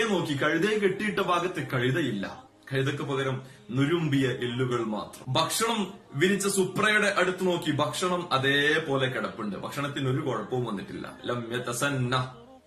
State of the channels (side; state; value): both; identical; correlation 1.00